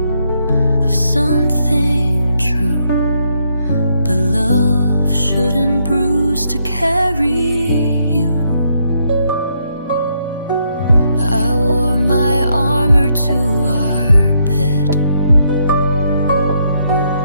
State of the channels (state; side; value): inverted; both; correlation -0.75